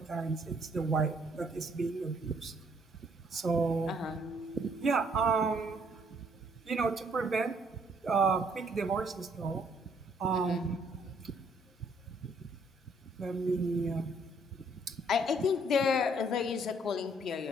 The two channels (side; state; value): both; normal; correlation 0.66